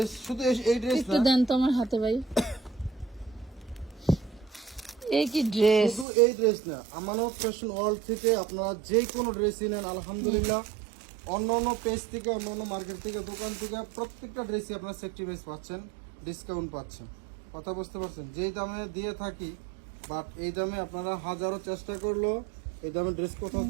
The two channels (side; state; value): left; drops out; at 6.1 s